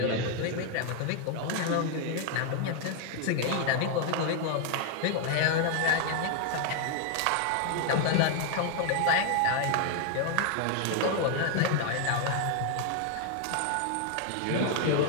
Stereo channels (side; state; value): both; different; correlation 0.00